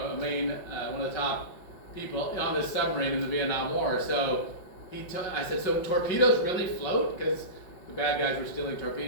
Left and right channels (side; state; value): right; late; 5.5 ms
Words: main, one of the top people on this submarine in the Vietnam War. So I said, so torpedoes really float? Because the bad guys were stealing